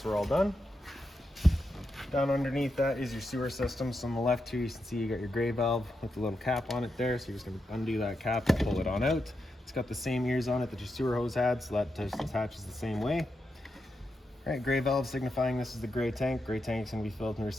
we're all done. Down underneath that is your sewer system. So on the left here, you can see you got your gray valve with the little cap on it there. So you're just gonna undo that cap and pull it on out. It's got the same ears on it that your sewer hose had, so that just attaches the same way. All right, gray valve signifying this is the gray tank. Gray tank's gonna be filled in your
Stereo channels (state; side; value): normal; both; correlation 0.86